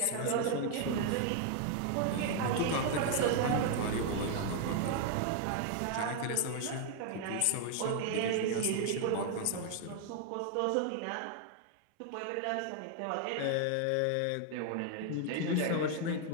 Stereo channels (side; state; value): both; different; correlation 0.00